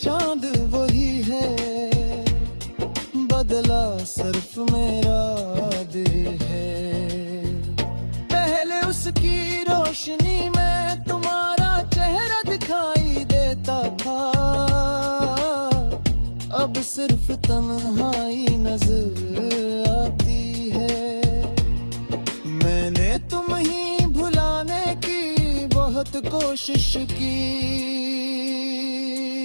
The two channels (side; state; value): both; inverted; correlation -1.00